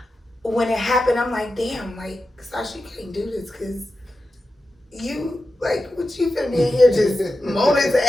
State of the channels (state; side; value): normal; both; correlation 0.92